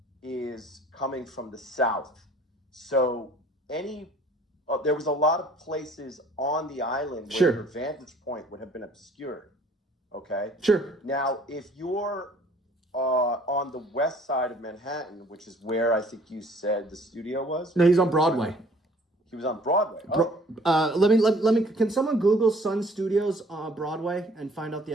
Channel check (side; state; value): both; normal; correlation 0.55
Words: is coming from the south. So there was a lot of places on the island where your Sure. vantage point would have been obscured. Okay. Sure. Now, if you're on the west side of Manhattan, which is where I think you said the studio was. No, he's on Broadway. He was on Broadway. Oh, Let me. Can someone Google Sun Studios Broadway and find out the